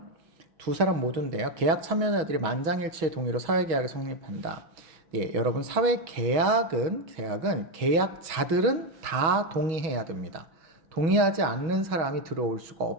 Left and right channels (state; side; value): late; left; 6.3 ms